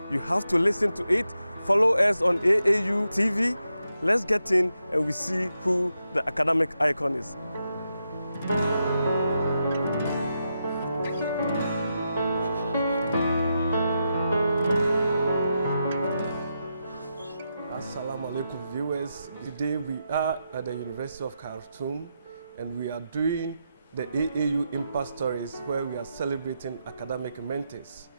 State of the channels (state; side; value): inverted; both; correlation -0.85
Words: You have to listen to it. Follow us on AAU TV. Let's get in and we see who the academic icon is. Assalamu alaikum viewers. Today we are at the University of Khartoum and we are doing the AAU Impact Stories where we are celebrating academic mentors.